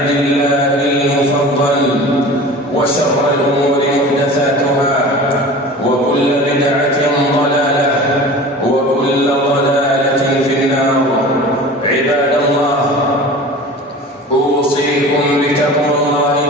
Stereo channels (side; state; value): both; normal; correlation 0.38